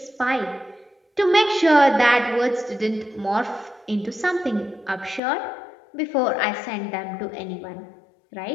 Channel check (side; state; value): right; drops out; at 5.2 s